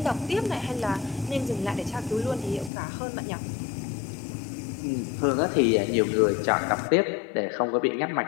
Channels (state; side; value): drops out; right; at 2.7 s